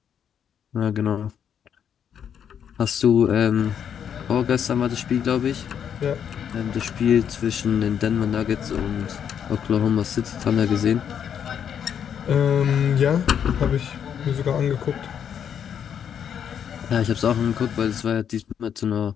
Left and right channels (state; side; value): quieter; right; 8.4 dB